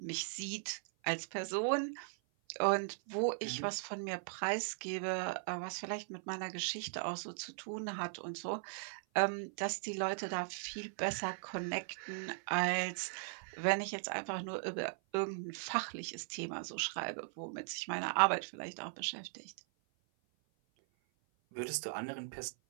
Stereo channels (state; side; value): silent; left; 52 dB below the other